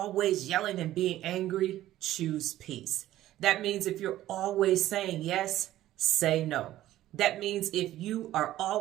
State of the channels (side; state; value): left; quieter; 14.1 dB